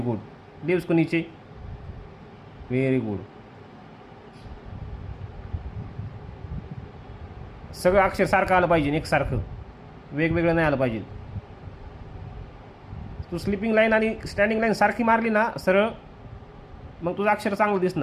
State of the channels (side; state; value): both; identical; correlation 1.00